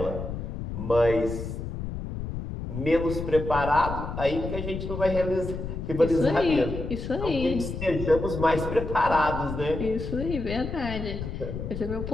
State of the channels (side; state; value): left; noise; rumble, 6 dB below the sound